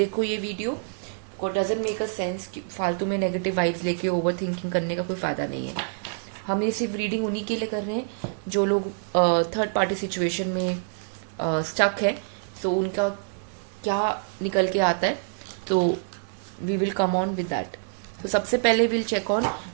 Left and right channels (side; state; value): left; silent; digital silence